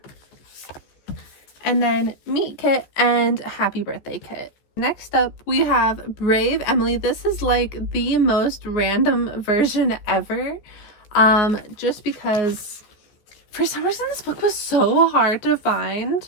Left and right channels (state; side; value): late; right; 14 ms